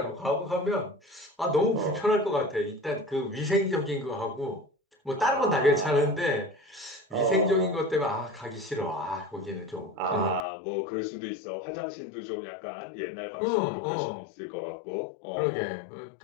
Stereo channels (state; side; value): drops out; right; at 10.5 s